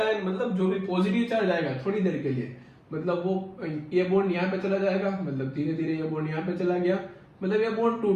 मतलब जो भी पॉजिटिव चार्ज आएगा थोड़ी देर के लिए, मतलब वो ये बॉन्ड यहाँ पे चला जाएगा, मतलब धीरे धीरे ये बॉन्ड यहाँ पे चला गया, मतलब ये बॉन्ड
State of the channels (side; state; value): both; identical; correlation 1.00